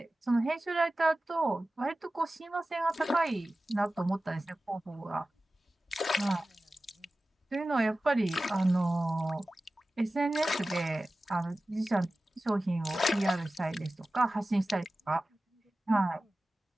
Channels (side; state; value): both; normal; correlation 0.95